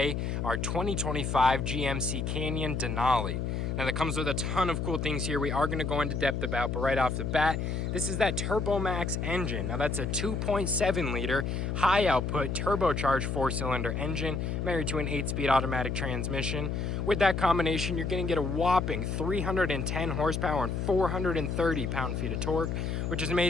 our 2025 GMC Canyon Denali. Now, that comes with a ton of cool things here we are going to go into depth about, but right off the bat, this is that TurboMax engine. Now, that's a 2.7 liter high output turbocharged 4-cylinder engine married to an 8-speed automatic transmission. With that combination, you're going to get a whopping 310 horsepower and 430 pound-feet of torque, which is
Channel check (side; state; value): left; noise; hum, 1 dB below the sound